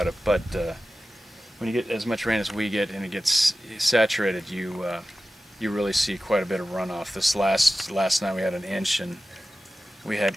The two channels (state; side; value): normal; both; correlation 0.95